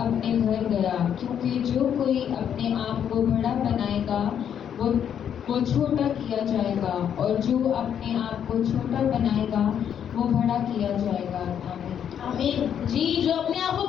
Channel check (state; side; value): quieter; right; 8.8 dB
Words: گھر گیا، کیونکہ جو کوئی اپنے آپ کو بڑا بنائے گا وہ چھوٹا کیا جائے گا، اور جو اپنے آپ کو چھوٹا بنائے گا وہ بڑا کیا جائے گا. آمین. آمین. جی. جو اپنے آپ کو